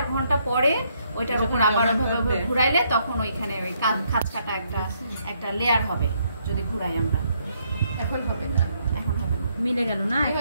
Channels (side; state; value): both; inverted; correlation -0.73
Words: ঘন্টা পরে ওইটার উপর আবার ওইভাবে ঘুরাইলে তখন ওইখানে ওই খাঁজ কাটা একটা লেয়ার হবে যদি ঘুরাই আমরা। এখন হবে না। এখন হবে না, মিলে গেল না?